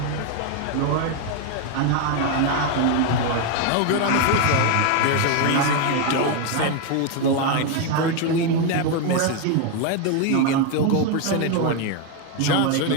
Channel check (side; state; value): both; different; correlation 0.01